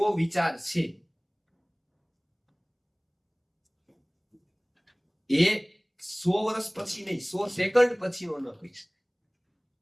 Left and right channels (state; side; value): identical; both; correlation 1.00